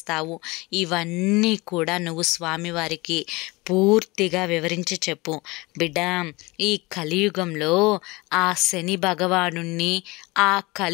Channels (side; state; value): right; quieter; 23.5 dB